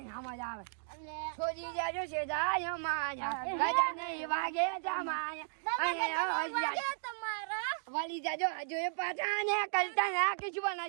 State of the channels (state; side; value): silent; left; digital silence